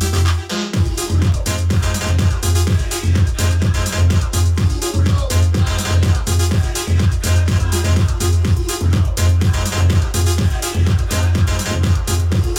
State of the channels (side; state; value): both; identical; correlation 1.00